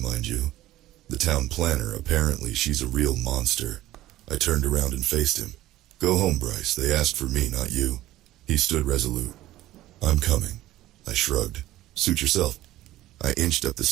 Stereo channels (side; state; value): left; quieter; 15.4 dB